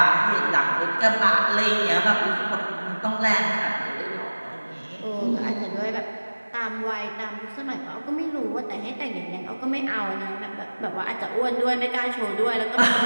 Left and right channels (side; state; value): both; inverted; correlation -1.00